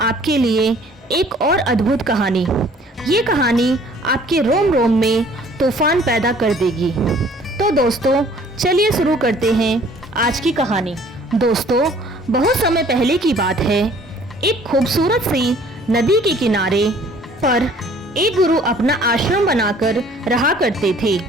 लिए एक और अद्भुत कहानी। ये कहानी आपके रोम रोम में तूफान पैदा कर देगी। तो दोस्तों, चलिए शुरू करते हैं आज की कहानी। दोस्तों, बहुत समय पहले की बात है। एक खूबसूरत सी नदी के किनारे पर एक गुरु अपना आश्रम बनाकर रहा करते थे।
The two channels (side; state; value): both; normal; correlation 0.55